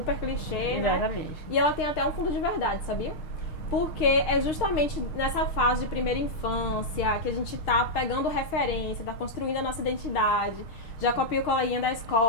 clichê, né? Exatamente. E ela tem até um fundo de verdade, sabia? Porque é justamente nessa fase de primeira infância que a gente tá pegando referência, tá construindo a nossa identidade. Já copia o coleguinha da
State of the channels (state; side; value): late; right; 6.5 ms